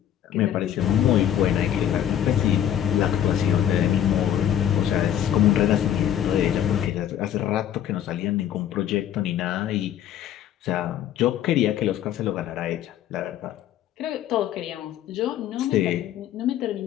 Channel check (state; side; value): quieter; right; 10.4 dB